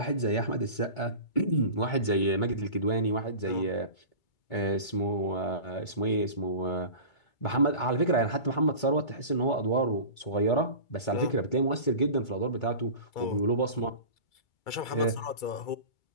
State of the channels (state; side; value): late; right; 2.3 ms